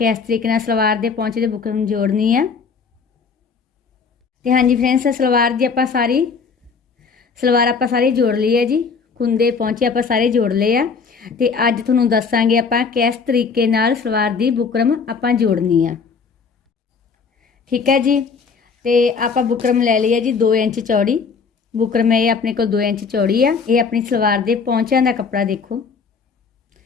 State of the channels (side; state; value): right; quieter; 5.4 dB